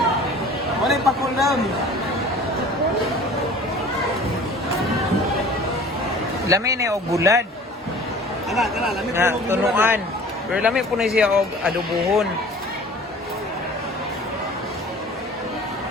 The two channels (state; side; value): normal; both; correlation 0.45